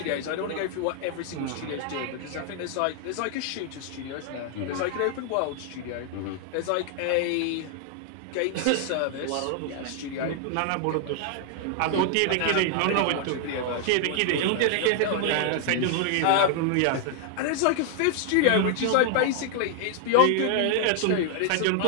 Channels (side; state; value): both; different; correlation 0.00